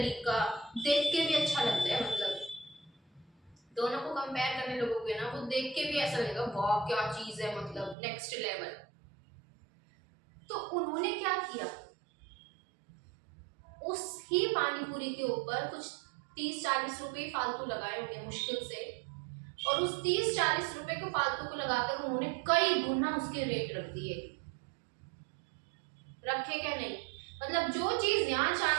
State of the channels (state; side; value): drops out; left; at 8.0 s